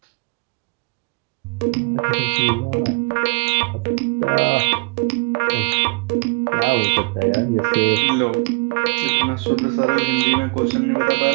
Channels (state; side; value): quieter; left; 31.3 dB